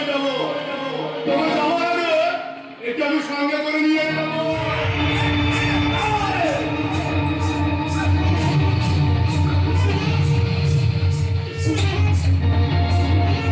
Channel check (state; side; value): identical; both; correlation 1.00